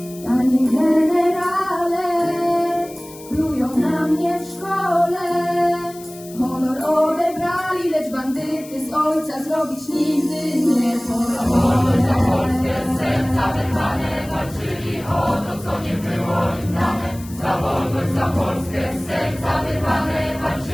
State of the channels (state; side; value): noise; left; hiss, 19 dB below the sound